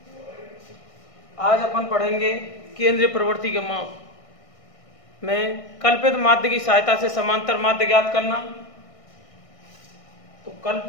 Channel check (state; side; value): late; right; 1.6 ms